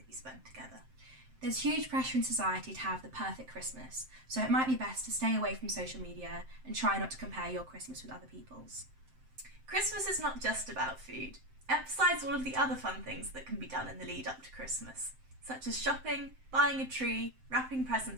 you spend together. There's huge pressure in society to have the perfect Christmas, so it might be best to stay away from social media and try not to compare your Christmas with other people's. Christmas is not just about food. Emphasise all of the other fun things that can be done in the lead up to Christmas, such as shopping, buying a tree, wrapping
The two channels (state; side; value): late; left; 7.7 ms